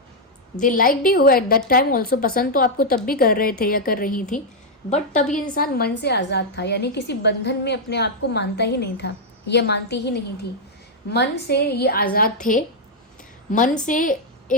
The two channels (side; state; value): both; normal; correlation -0.02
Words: They liked you at that time also, पसंद तो आपको तब भी कर रहे थे या कर रही थी, बट तब ये इंसान मन से आज़ाद था, यानी किसी बंधन में अपने आप को मानता ही नहीं था, ये मानती ही नहीं थी। मन से ये आज़ाद थे, मन से